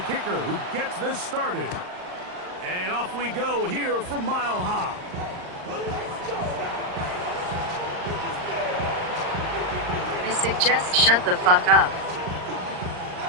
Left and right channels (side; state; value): left; late; 39 ms